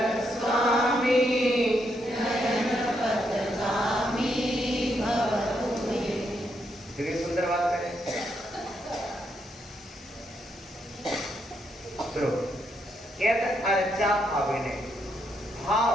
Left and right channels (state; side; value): normal; both; correlation 0.78